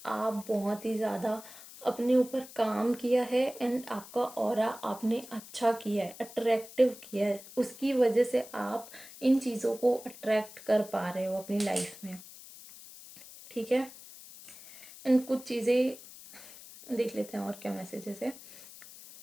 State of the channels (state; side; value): noise; left; hiss, 17 dB below the sound